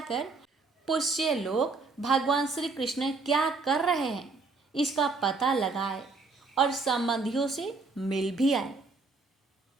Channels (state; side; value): quieter; left; 3.9 dB